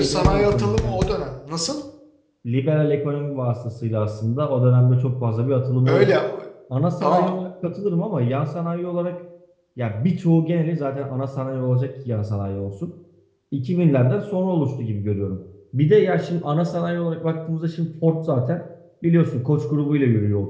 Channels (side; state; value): both; identical; correlation 1.00